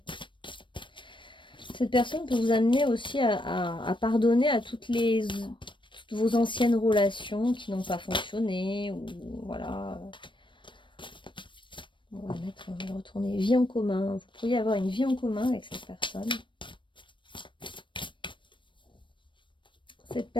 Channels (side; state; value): right; late; 0.24 ms